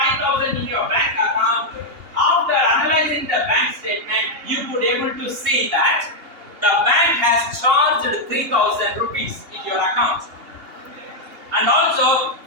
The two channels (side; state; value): left; late; 2.8 ms